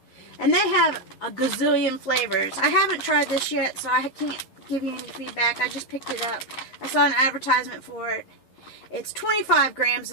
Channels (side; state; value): right; late; 11 ms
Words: And they have a gazillion flavors. I haven't tried this yet, so I can't give you any feedback. I just picked it up. I saw an advertisement for it. It's 25 grams